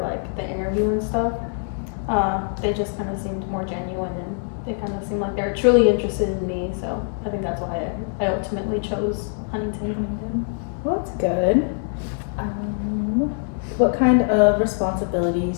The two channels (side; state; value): right; silent; digital silence